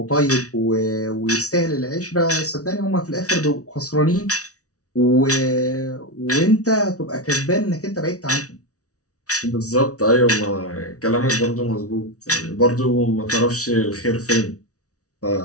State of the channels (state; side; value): late; right; 0.66 ms